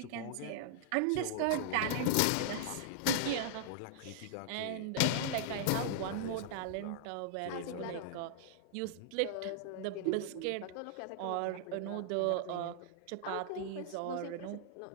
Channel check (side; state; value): both; different; correlation -0.01